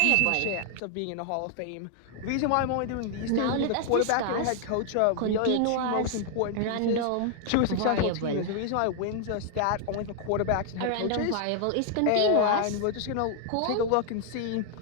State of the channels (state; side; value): different; both; correlation 0.00